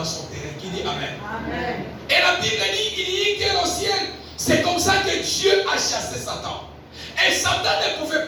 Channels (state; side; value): identical; both; correlation 1.00